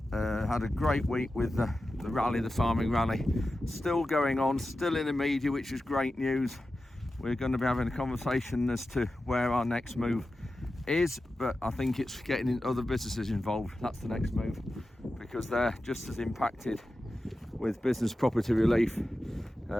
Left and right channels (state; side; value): normal; both; correlation 0.93